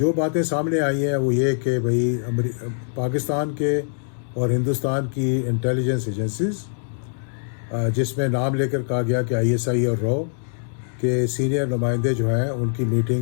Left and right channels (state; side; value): silent; right; digital silence